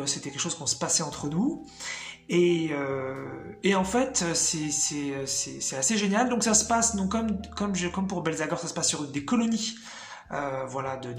c'était quelque chose qu'on se passait entre nous. Et en fait, c'est assez génial. Donc ça se passe donc comme pour Belzagor, ça se passe sur des colonies. Voilà,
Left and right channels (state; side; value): identical; both; correlation 1.00